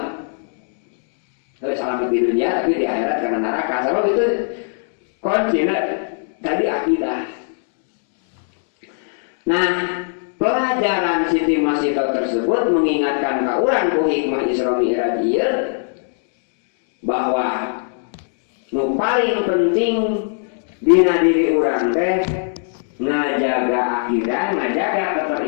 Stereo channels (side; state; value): right; silent; digital silence